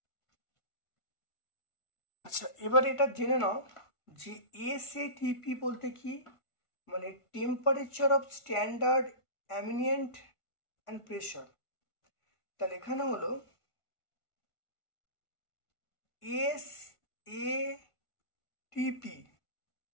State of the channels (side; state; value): right; late; 1.5 ms